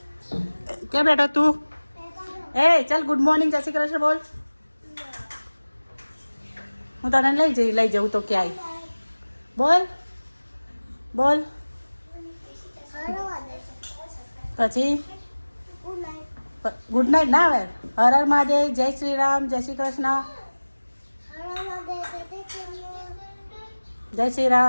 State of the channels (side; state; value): both; inverted; correlation -1.00